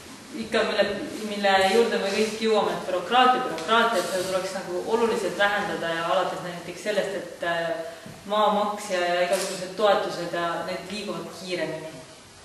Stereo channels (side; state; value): both; identical; correlation 1.00